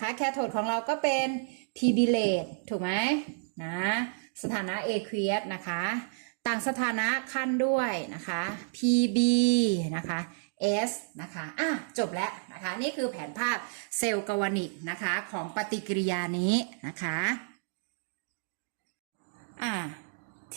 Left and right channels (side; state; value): left; silent; digital silence